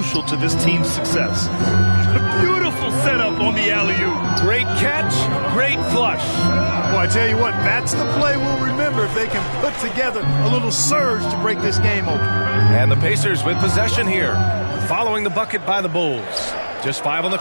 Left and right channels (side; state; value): both; inverted; correlation -1.00